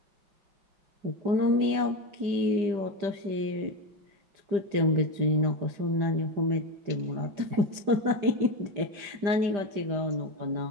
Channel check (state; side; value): late; left; 5.0 ms